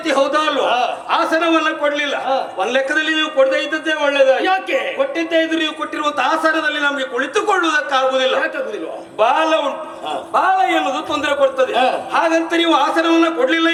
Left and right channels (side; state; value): both; identical; correlation 1.00